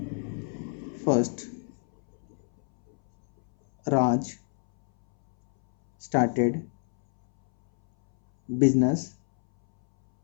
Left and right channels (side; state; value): right; silent; 60 dB below the other